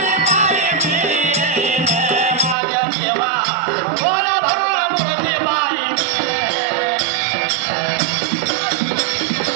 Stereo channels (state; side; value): drops out; left; at 2.6 s